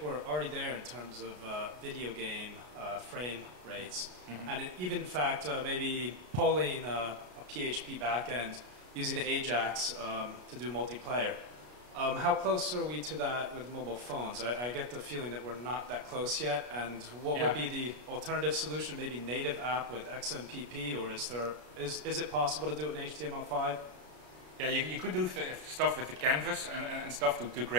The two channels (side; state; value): left; late; 33 ms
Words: we're already there in terms of video game frame rates. Mm-hmm. And even in fact, maybe polling a PHP backend using Ajax to do multiplayer. How close are we to that with mobile phones? I get the feeling that we're not that close yet. And what would be the alternative solution? Maybe native app with XMPP, or is it possible to do it in HTML5? Yeah, you could do stuff with the canvas and stuff to